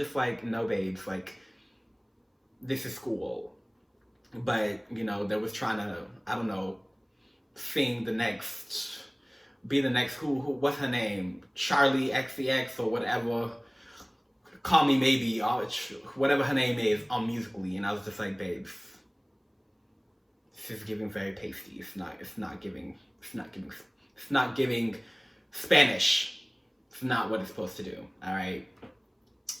like, no, babes, like, this is school. But, you know, they was trying to, I don't know, be the next, what's her name? Charlie XCX or whatever. Call Me Maybe, whatever her name is, on Musical.ly. And I was just like, babes, this is giving very pasty. It's not giving Spanish. It's not what it's supposed to do, all right?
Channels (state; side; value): identical; both; correlation 1.00